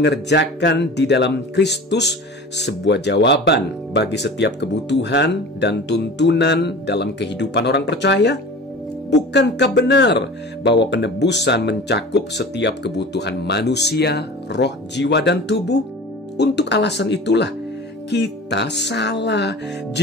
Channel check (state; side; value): normal; both; correlation 0.38